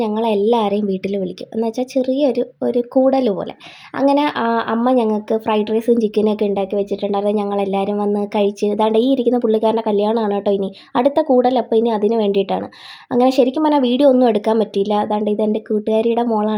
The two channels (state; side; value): identical; both; correlation 1.00